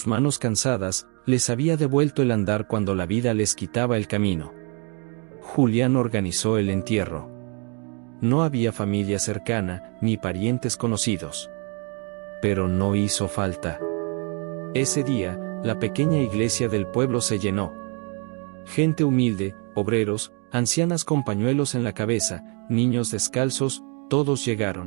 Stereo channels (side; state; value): left; quieter; 36.1 dB